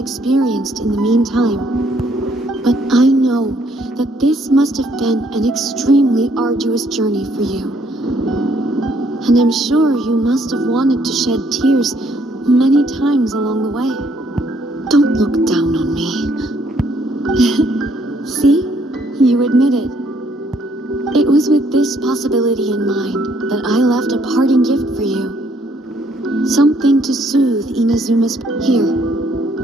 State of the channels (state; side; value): normal; both; correlation 0.67